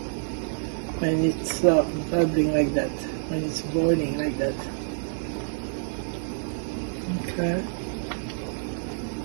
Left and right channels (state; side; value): silent; left; digital silence